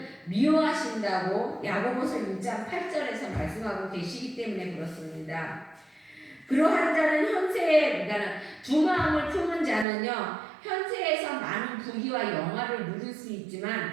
미워하신다고 야고보서 1장 8절에서 말씀하고 계시기 때문에 그렇습니다. 그러한 자는 그러니까 두 마음을 품은 자는요, 현세에서 많은 부귀와 영화를 누릴 수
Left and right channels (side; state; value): left; drops out; at 9.9 s